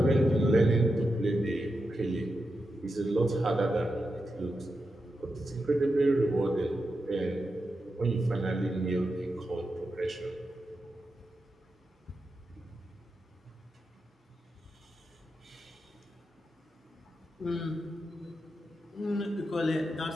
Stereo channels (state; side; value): normal; both; correlation 0.88